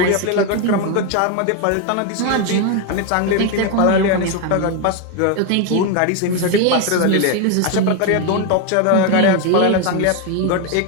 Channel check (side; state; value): both; different; correlation 0.01